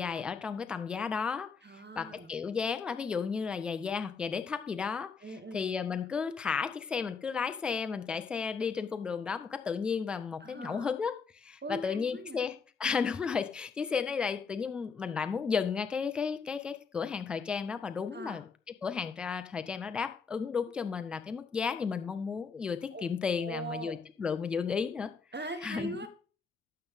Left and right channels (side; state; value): right; quieter; 5.4 dB